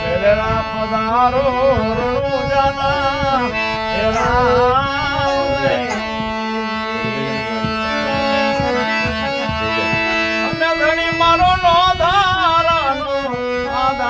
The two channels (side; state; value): both; identical; correlation 1.00